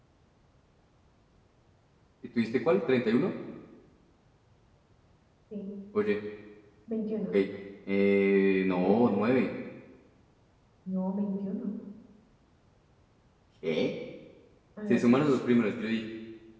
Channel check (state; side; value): identical; both; correlation 1.00